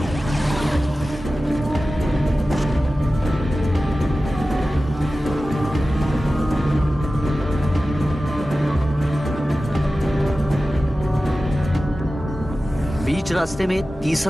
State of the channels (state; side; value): normal; both; correlation 0.95